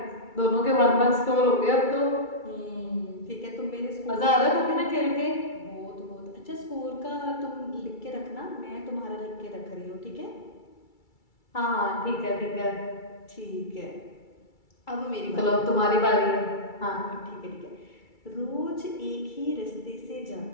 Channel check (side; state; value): right; late; 2.3 ms